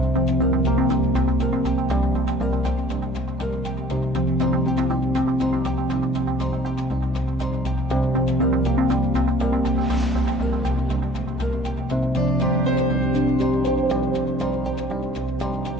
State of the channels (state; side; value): normal; both; correlation 0.53